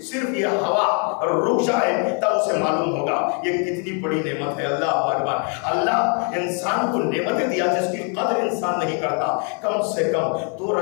صرف یہ ہوا رک جائے تب اسے معلوم ہوگا یہ کتنی بڑی نعمت ہے۔ اللہ اکبر، اللہ انسان کو نعمتیں دیا جس کی قدر انسان نہیں کرتا۔ کم سے کم 2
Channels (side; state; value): right; quieter; 39.5 dB